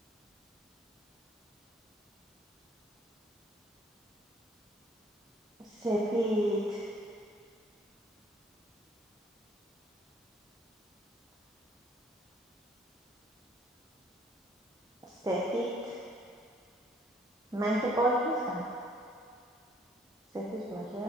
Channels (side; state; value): both; normal; correlation 0.62